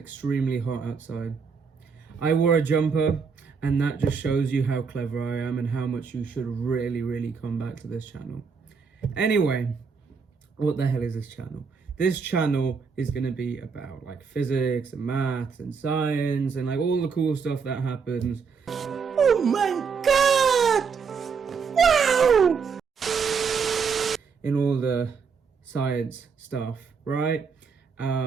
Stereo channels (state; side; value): quieter; left; 5.7 dB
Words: hot outside. I wore a jumper, and that just shows you how clever I am and how much you should really come back to this channel. Anyway, what the hell is this channel? This channel is going to be about like physics and maths and science and like all the cool stuff that happens. Oh my god! Wow! In all the science stuff, right?